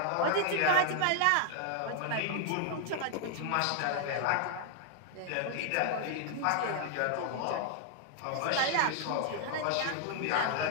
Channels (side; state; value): both; different; correlation 0.00